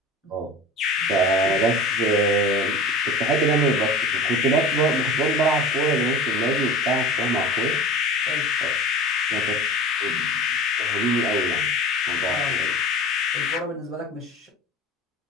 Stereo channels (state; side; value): normal; both; correlation 0.37